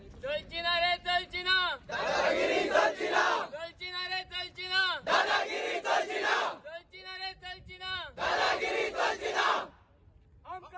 चलचिना रे चलचिना दादागिरी चलचिना चलचिना रे चलचिना दादागिरी चलचिना चलचिना रे चलचिना दादागिरी चलचिना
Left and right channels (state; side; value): identical; both; correlation 1.00